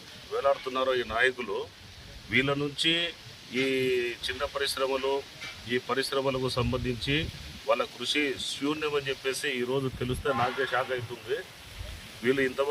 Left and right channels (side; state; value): both; identical; correlation 1.00